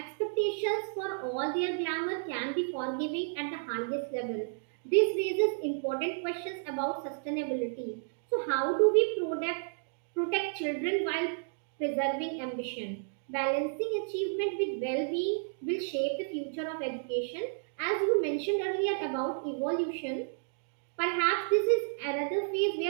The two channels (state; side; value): silent; left; digital silence